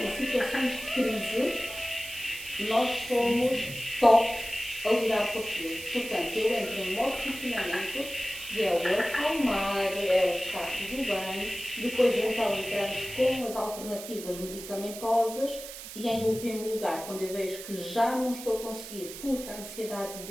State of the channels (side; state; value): right; noise; hiss, 12 dB below the sound